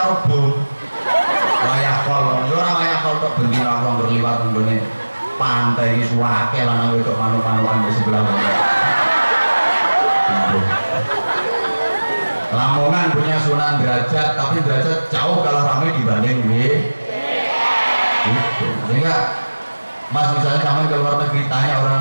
bom wayah kol, yo ora wayah kol tok bengi ra berliwat nggone pantai iki suwake lanang wedok manuk-manukan di sebelah kono. Lamongan punya Sunan Derajat, tapi Derajat jauh kalah ramai dibanding itu. Sehingga Mas misalnya kamu ke luar negeri, tanya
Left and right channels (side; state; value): both; inverted; correlation -1.00